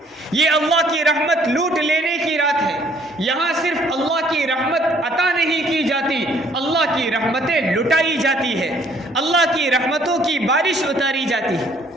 یہ اللہ کی رحمت لوٹ لینے کی رات ہے۔ یہاں صرف اللہ کی رحمت عطا نہیں کی جاتی، اللہ کی رحمتیں لٹائی جاتی ہے، اللہ کی رحمتوں کی بارش اتاری جاتی ہے۔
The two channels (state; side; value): normal; both; correlation 0.62